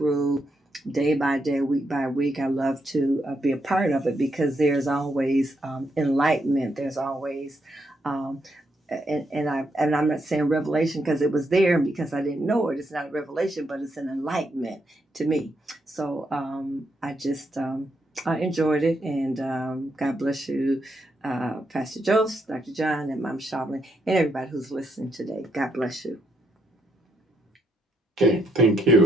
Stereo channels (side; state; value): both; normal; correlation 0.78